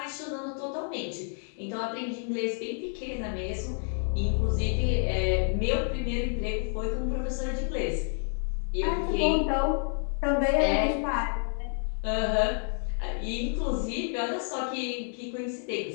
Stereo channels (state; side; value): silent; right; 56 dB below the other